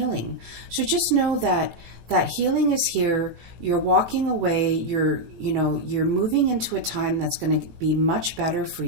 So just know that healing is here. You're walking away. You're moving into a time that's going to be much better for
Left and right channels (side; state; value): left; late; 18 ms